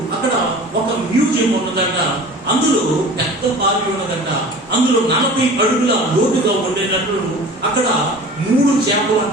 అక్కడ ఒక మ్యూజియం ఉన్నదంట. అందులో పెద్ద బావి ఉన్నదంట. అందులో 40 అడుగుల లోతుగా ఉండేటట్లు అక్కడ 3 చేపలు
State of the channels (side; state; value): both; normal; correlation 0.40